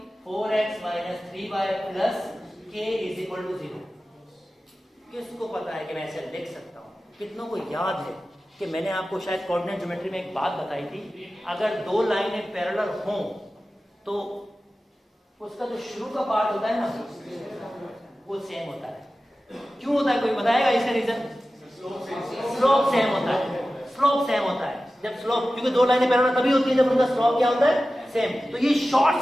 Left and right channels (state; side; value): normal; both; correlation 0.95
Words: 4x - 3y + k = 0। किसको पता है कि मैं ऐसे लिख सकता हूं? कितनों को याद है कि मैंने आपको शायद कोऑर्डिनेट ज्योमेट्री में एक बात बताई थी, अगर दो लाइनें पैरेलल हों तो उसका जो शुरू का पार्ट होता है ना वो सेम होता है। क्यों होता है? कोई बताएगा इसका रीजन? स्लोप सेम होता है। स्लोप सेम होता है जब स्लोप, क्योंकि दो लाइनें पैरेलल तभी होती है जब उनका स्लोप क्या होता है? सेम। तो ये